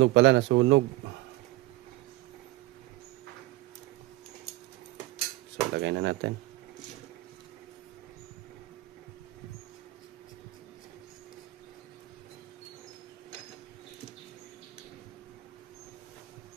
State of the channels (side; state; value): left; quieter; 18.7 dB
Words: So lagay na natin.